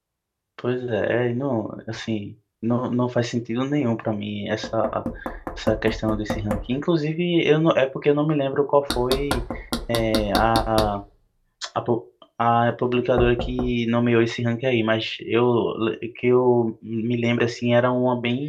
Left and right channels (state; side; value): identical; both; correlation 1.00